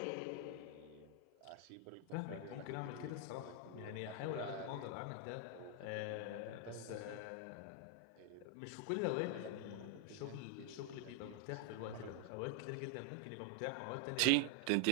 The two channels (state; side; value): different; both; correlation 0.00